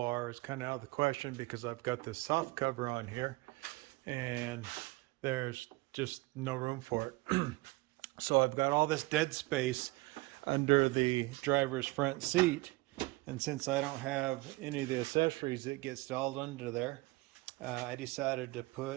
is kind of out of the question because I've got this soft cover on here and there's just no room for it. So I've got all this dead space under the driver's front seat, and since I don't have any of the accessories that get installed under there, I decided to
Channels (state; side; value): quieter; left; 22.1 dB